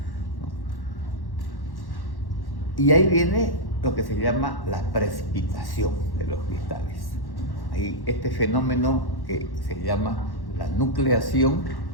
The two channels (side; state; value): right; late; 1.1 ms